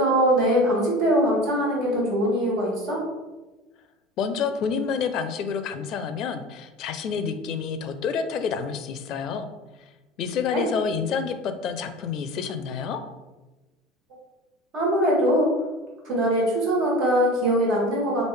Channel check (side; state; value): both; normal; correlation 0.35